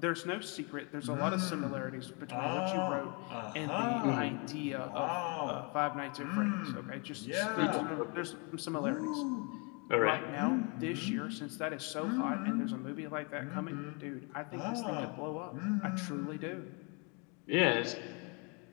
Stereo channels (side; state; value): right; quieter; 33.1 dB